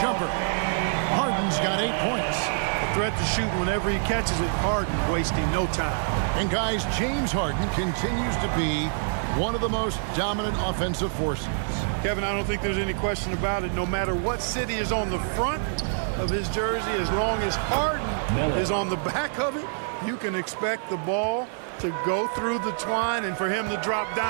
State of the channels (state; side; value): silent; left; digital silence